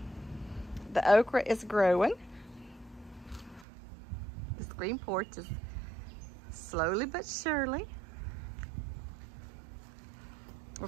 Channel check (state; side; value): drops out; left; at 3.7 s